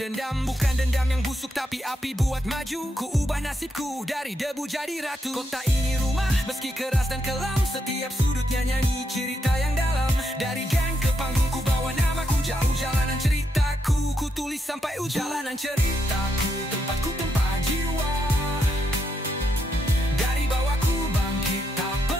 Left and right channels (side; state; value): both; normal; correlation 0.80